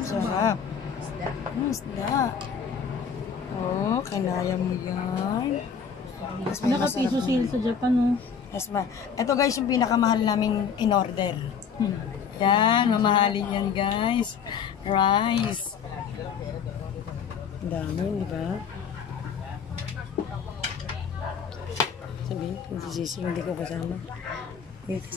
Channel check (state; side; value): quieter; right; 6.8 dB